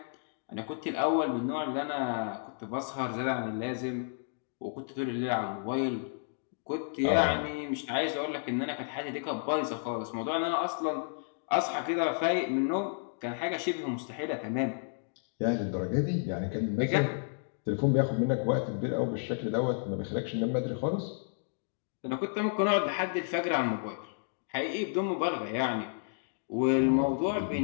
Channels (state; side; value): silent; right; digital silence